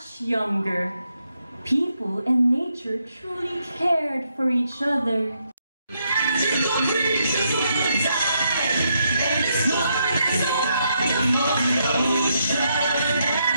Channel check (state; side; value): inverted; both; correlation -0.78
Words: younger, people and nature truly cared for each other. Magical creatures will die, and it's one that's a wonderful ocean